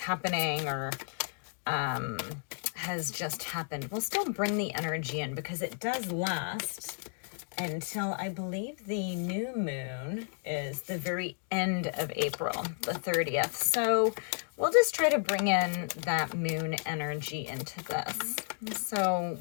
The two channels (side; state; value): right; silent; 56 dB below the other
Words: or has just happened, we'll still bring the energy in because it does last until I believe the new moon is the very end of April, the 30th. So we'll just try to bring in that moon energy into this. So